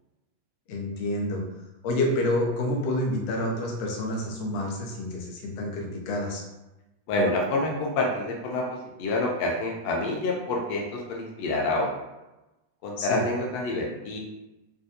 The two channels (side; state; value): right; late; 8.2 ms